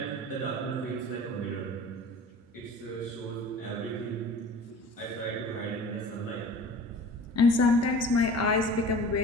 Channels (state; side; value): normal; both; correlation 0.41